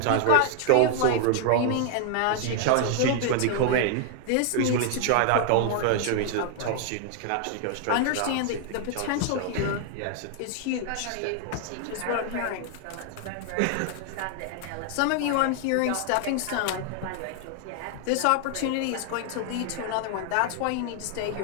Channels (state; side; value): different; both; correlation 0.00